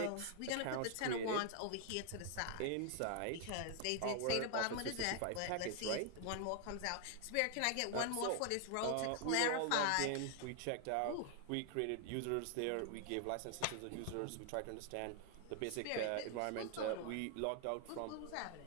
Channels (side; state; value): both; different; correlation 0.00